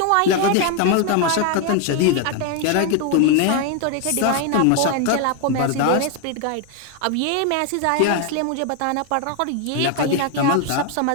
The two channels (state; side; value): different; both; correlation 0.01